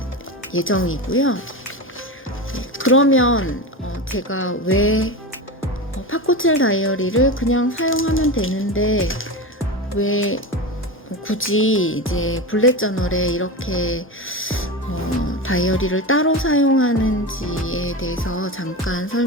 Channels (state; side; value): normal; both; correlation 0.23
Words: 예정이고요. 그러면 제가 왜 파코첼 다이어리를 그냥 사용하면 되는데 왜 굳이 이제 블렛 저널에 이렇게 다이어리를 따로 사용하는지에 대해서 잠깐